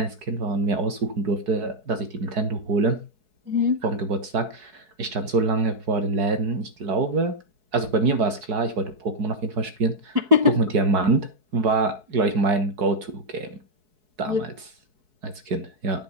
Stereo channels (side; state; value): left; late; 4.7 ms